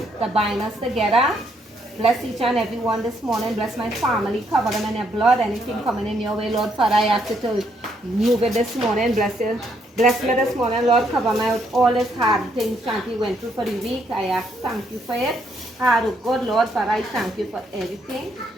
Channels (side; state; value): both; normal; correlation 0.73